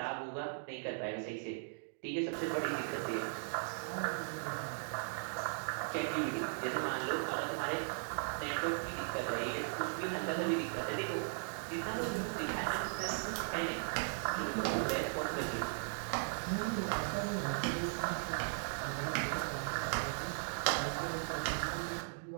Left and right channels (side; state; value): left; silent; digital silence